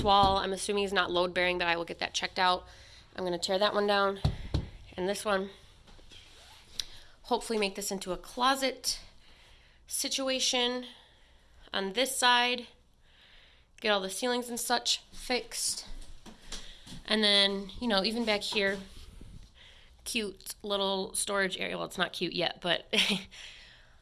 wall, I'm assuming, is not load bearing, but I will get that checked out. I'm going to tear that one down. And this one, hopefully make this into a closet situation. On this side, get all the ceilings and such fixed. And then, even back here, cute little storage area. Well, it's not cute yet, but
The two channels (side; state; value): both; identical; correlation 1.00